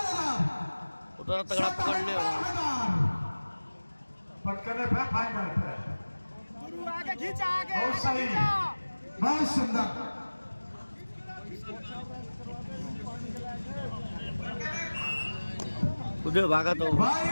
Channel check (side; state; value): both; inverted; correlation -1.00